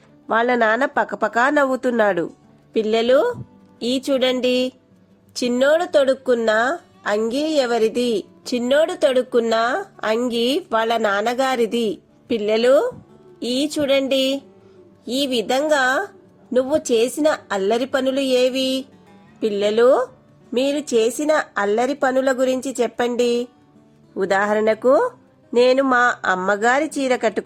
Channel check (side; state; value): both; identical; correlation 1.00